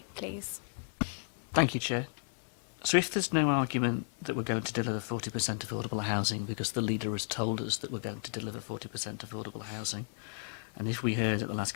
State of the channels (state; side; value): silent; right; 55 dB below the other